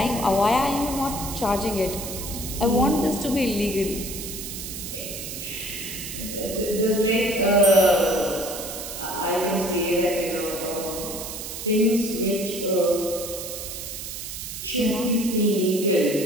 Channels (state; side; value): noise; right; hiss, 8 dB below the sound